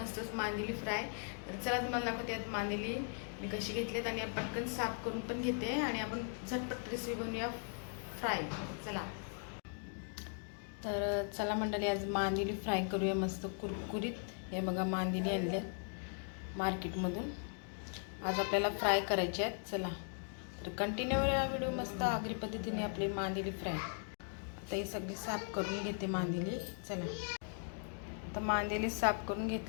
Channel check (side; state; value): right; silent; 52 dB below the other